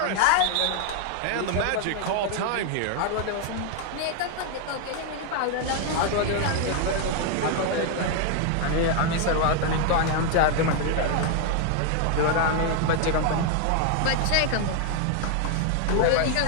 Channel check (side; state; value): both; different; correlation 0.00